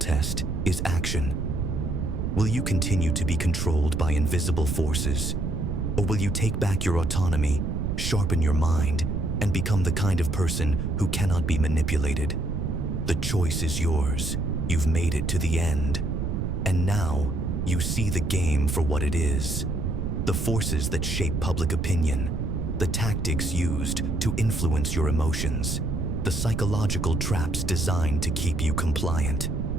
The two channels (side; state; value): right; noise; rumble, 1 dB below the sound